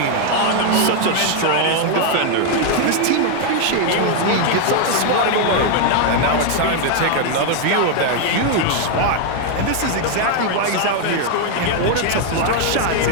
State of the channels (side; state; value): both; different; correlation 0.01